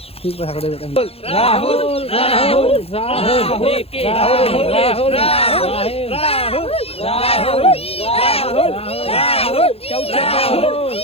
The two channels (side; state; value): right; late; 0.28 ms